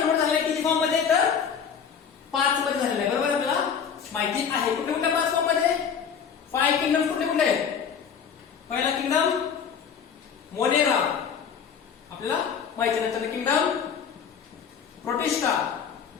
झालेलं किती फॉर्म मध्ये? तर 5 मध्ये झालेलं आहे. बरोबर आपल्याला माहिती आहे. कुठे कुठे 5 फॉर्म मध्ये? 5 किंगडम कुठे कुठे? पहिला किंगडम मोनेरा आपल्याला माहिती आहे. नंतर किंगडम प्रोटिस्टा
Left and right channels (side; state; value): right; quieter; 7.1 dB